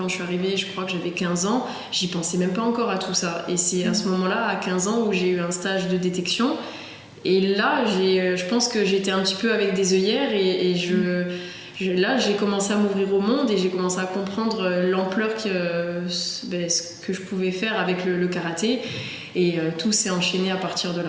je suis arrivée, je crois que j'avais 15 ans, j'y pensais même pas encore à tout ça. Et c'est à ce moment-là, à 15 ans, où j'ai eu un stage de détection. Et là, je pense que j'étais un petit peu avec des œillères là, j'ai commencé à m'ouvrir au monde et j'ai commencé à comprendre l'ampleur ce que je pouvais faire avec le karaté. Et tout s'est enchaîné à partir de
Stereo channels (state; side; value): identical; both; correlation 1.00